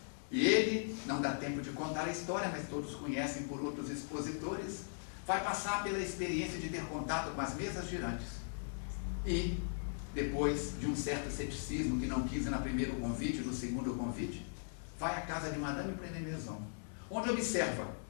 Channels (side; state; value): right; silent; digital silence